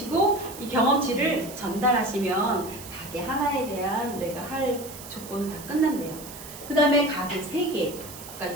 이 경험치를 전달하시면 가게 하나에 대한 내가 할 조건은 다 끝난대요. 그 다음에 가게 3개가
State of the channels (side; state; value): right; noise; hiss, 14 dB below the sound